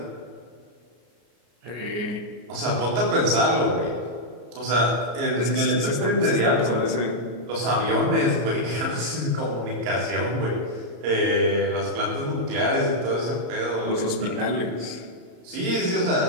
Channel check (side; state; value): left; late; 34 ms